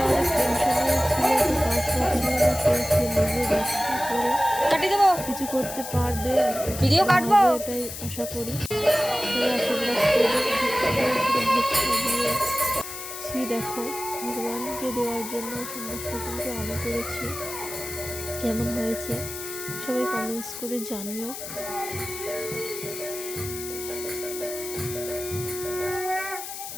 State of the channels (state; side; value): noise; left; hiss, 9 dB below the sound